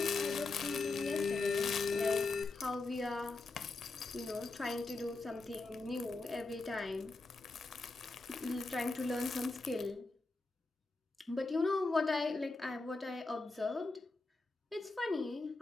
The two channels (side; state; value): right; quieter; 3.4 dB